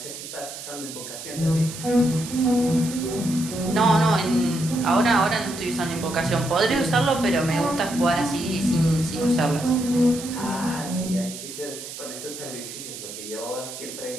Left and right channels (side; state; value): right; noise; hiss, 11 dB below the sound